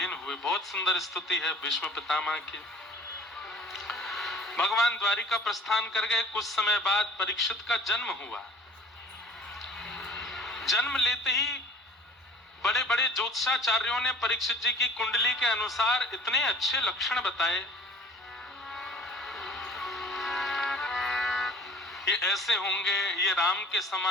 हुए। बहुत सुंदर स्तुति है भीष्म पितामह की। भगवान द्वारिका प्रस्थान कर गए। कुछ समय बाद परीक्षित का जन्म हुआ। जन्म लेते ही बड़े बड़े ज्योतिषाचार्यों ने परीक्षित जी की कुंडली के अनुसार इतने अच्छे लक्षण बताए, ये ऐसे होंगे, ये राम के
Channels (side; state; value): both; normal; correlation 0.47